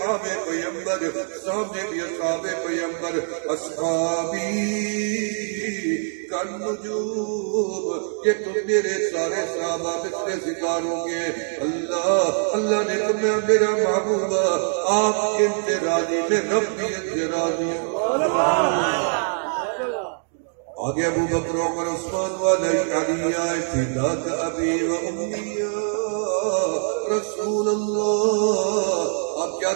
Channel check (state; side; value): silent; left; digital silence